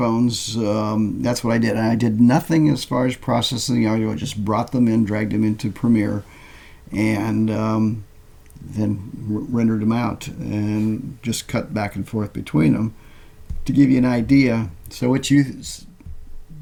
That's what I did. And I did nothing as far as processing the audio. I just brought them in, dragged them into Premiere, and then rendered them out and just cut back and forth between them to give you an idea. So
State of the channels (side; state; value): both; identical; correlation 1.00